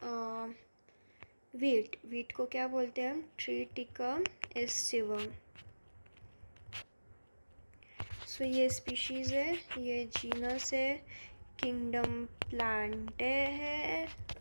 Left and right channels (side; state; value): both; inverted; correlation -1.00